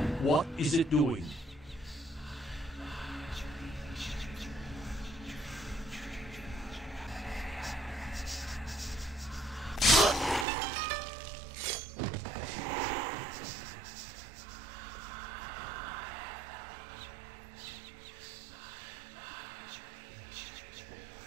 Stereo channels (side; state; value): left; drops out; at 10.5 s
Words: What is it doing?